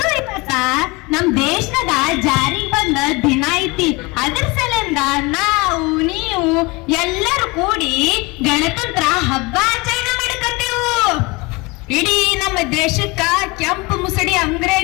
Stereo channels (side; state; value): right; quieter; 25.3 dB